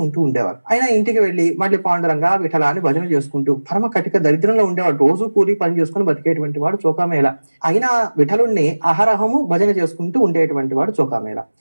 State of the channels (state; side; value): inverted; both; correlation -1.00